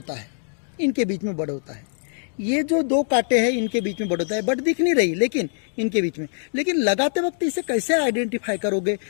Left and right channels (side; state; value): right; silent; digital silence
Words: है, इनके बीच में बड होता है। ये जो दो कांटे हैं इनके बीच में बड होता है, बड दिख नहीं रही लेकिन इनके बीच में। लेकिन लगाते वक्त इसे कैसे आइडेंटिफाई करोगे?